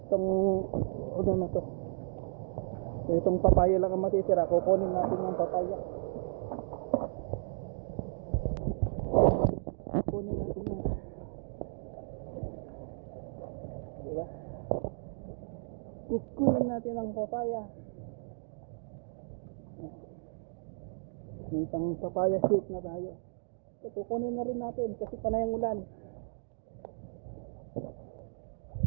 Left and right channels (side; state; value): left; silent; digital silence